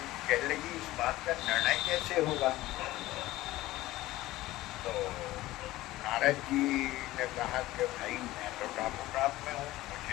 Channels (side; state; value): right; quieter; 17.1 dB